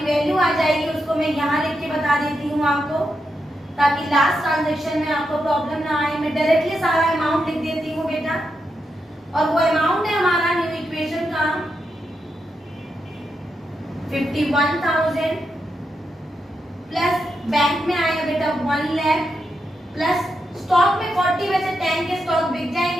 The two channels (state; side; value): normal; both; correlation 0.85